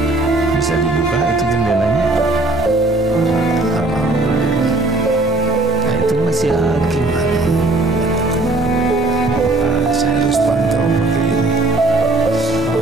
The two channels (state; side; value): quieter; left; 3.0 dB